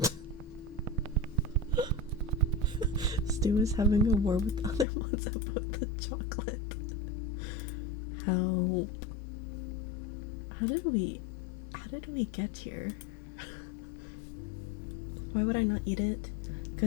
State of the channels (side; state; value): right; drops out; at 4.9 s